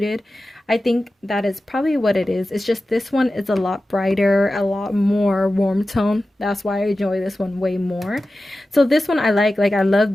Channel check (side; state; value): both; normal; correlation 0.94